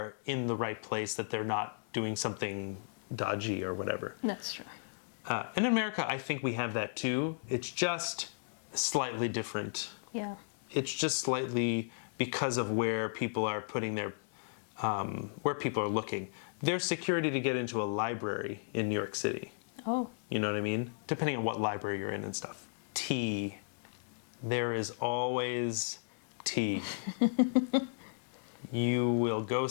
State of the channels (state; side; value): silent; right; digital silence